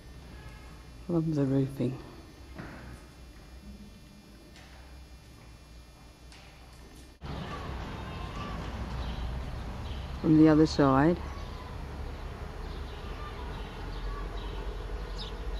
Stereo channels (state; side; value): identical; both; correlation 1.00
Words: Love the roofing. From the other side,